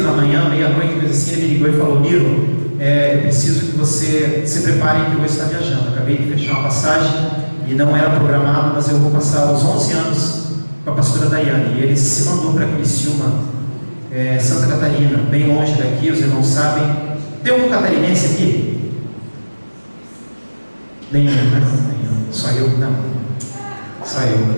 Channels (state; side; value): inverted; both; correlation -1.00